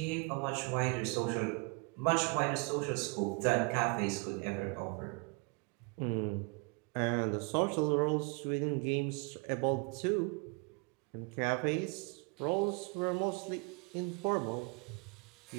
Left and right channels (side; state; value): left; quieter; 31.3 dB